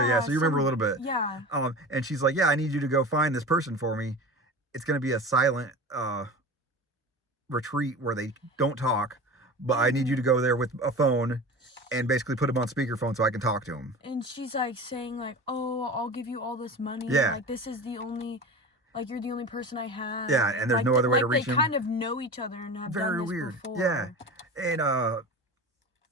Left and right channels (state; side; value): normal; both; correlation 0.33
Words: yeah, so you remember a little bit. Yeah. And she's like, yeah, I need you to go find this person for me. It's going to be a silent retreat where they don't talk, but I need you to go there with a phone and basically put him on speakerphone so I can talk to him. And she's like saying like, oh, I'll give you all this money. Yeah. Like this is the only, like you're the only person I have. Yeah, and there's like, no other way to reach him. They kind of know each other and have Very done this weird. before. Yeah. And